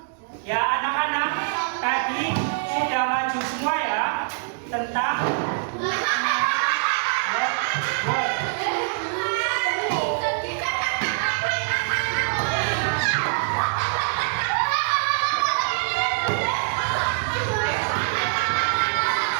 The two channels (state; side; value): silent; left; digital silence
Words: Ya anak-anak, tadi sudah maju semua ya tentang